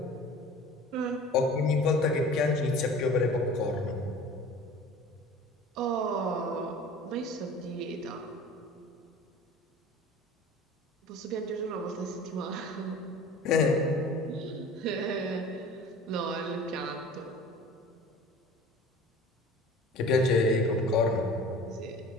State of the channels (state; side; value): normal; both; correlation 0.43